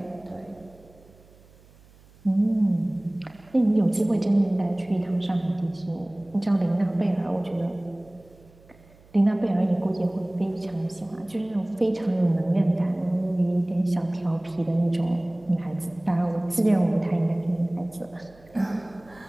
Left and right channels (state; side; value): noise; right; hum, 27 dB below the sound